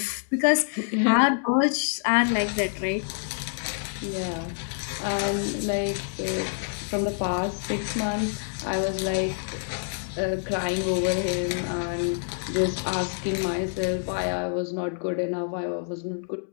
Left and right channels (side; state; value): right; silent; digital silence